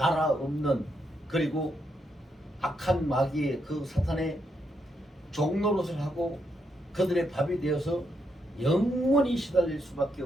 없는, 그리고 악한 마귀의 그 사탄의 종노릇을 하고 그들의 밥이 되어서 영원히 시달릴 수밖에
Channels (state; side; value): normal; both; correlation 0.79